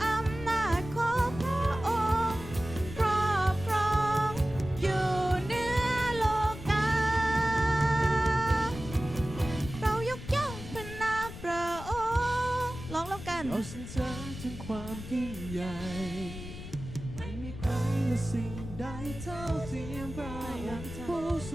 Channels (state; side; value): noise; left; rumble, 11 dB below the sound